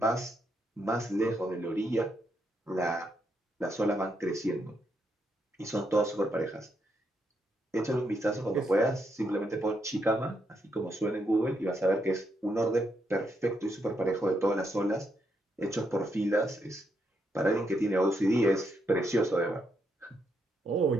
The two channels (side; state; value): both; normal; correlation 0.79